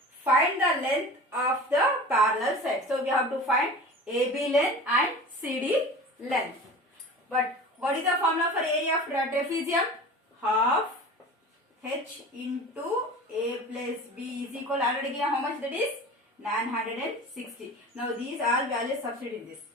Find the length of the parallel side. So we have to find AB length and CD length. But what is the formula for area of trapezium? Half H into A plus B is equal, already given how much, that is 960. Now these all values substitute in this.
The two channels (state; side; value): normal; both; correlation 0.37